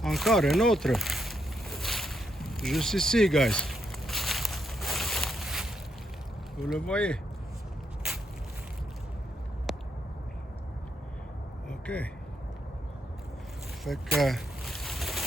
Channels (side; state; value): both; normal; correlation 0.79